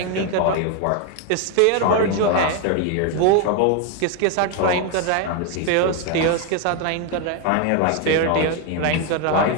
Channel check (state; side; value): different; both; correlation 0.01